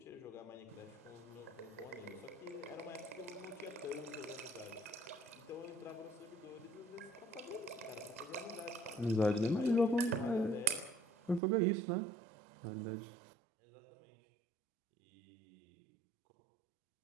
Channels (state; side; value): drops out; left; at 11.4 s